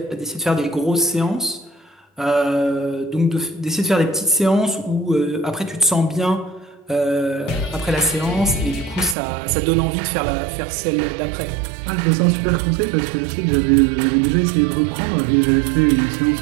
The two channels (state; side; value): drops out; left; at 9.2 s